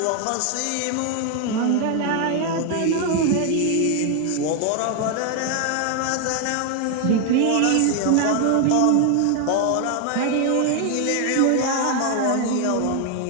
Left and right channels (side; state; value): both; different; correlation 0.01